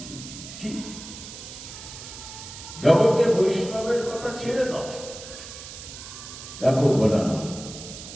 ছি ছি। জগতে বৈষ্ণবের কথা ছেড়ে দাও। দেখো বলা না,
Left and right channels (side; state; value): right; noise; hiss, 12 dB below the sound